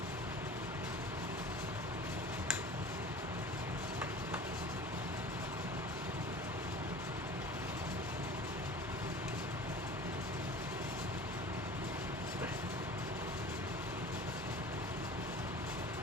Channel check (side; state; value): both; normal; correlation 0.39